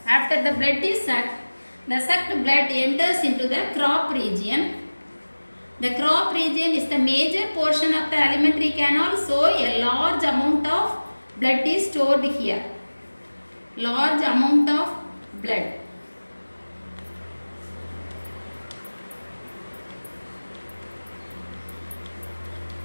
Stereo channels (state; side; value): inverted; both; correlation -1.00